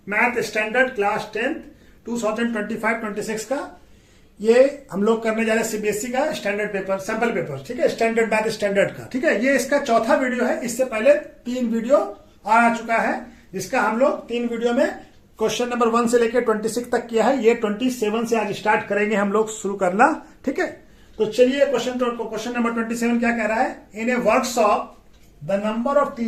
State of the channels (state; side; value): identical; both; correlation 1.00